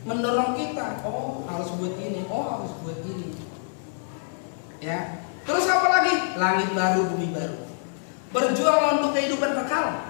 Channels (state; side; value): silent; right; digital silence